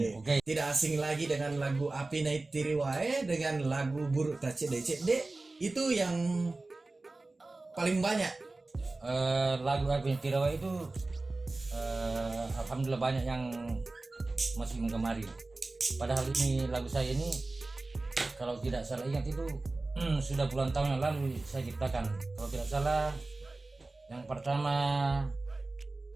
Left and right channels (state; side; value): quieter; left; 3.2 dB